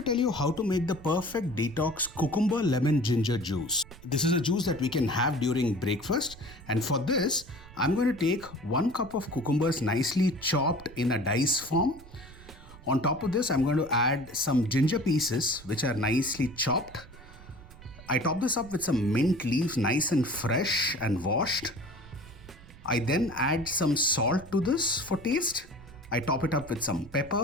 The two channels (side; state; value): right; noise; rumble, 19 dB below the sound